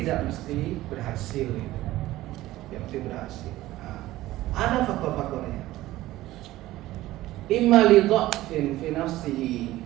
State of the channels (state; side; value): quieter; left; 16.3 dB